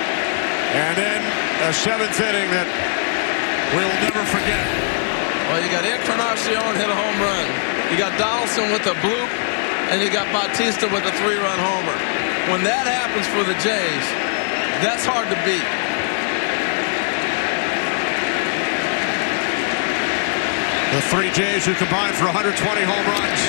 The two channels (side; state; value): right; silent; digital silence